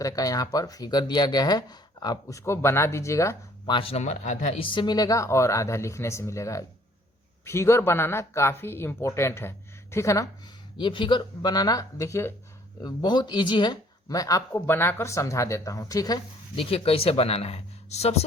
का यहाँ पर फिगर दिया गया है, आप उसको बना दीजिएगा। 5 नंबर आधा इससे मिलेगा और आधा लिखने से मिलेगा। फिगर बनाना काफ़ी इम्पोर्टेंट है, ठीक है ना। ये फिगर बनाना देखिए बहुत इजी है, मैं आपको बनाकर समझा देता हूँ। ठीक है, देखिए कैसे बनाना है।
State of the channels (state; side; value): normal; both; correlation 0.59